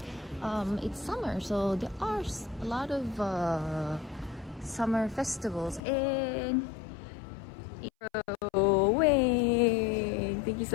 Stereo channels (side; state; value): right; drops out; at 5.8 s